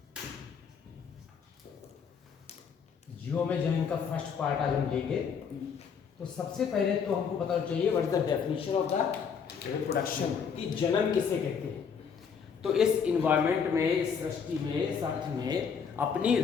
जीवों में जनन का फर्स्ट पार्ट आज हम लेंगे। तो सबसे पहले तो हमको पता चाहिए what is the definition of the reproduction, कि जनन किसे कहते हैं। तो इस इन्वायरमेंट में, इस सृष्टि में, इस अर्थ में अपनी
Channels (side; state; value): right; quieter; 6.6 dB